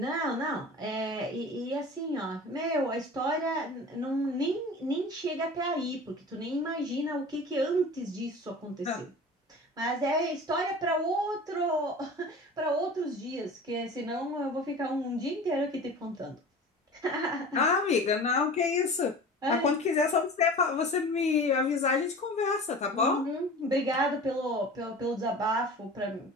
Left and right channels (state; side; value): normal; both; correlation 0.38